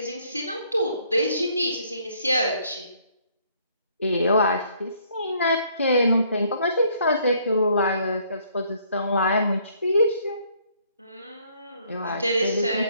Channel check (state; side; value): inverted; both; correlation -0.65